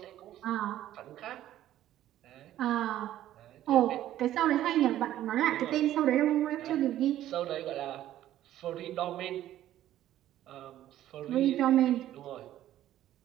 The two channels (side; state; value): left; quieter; 12.9 dB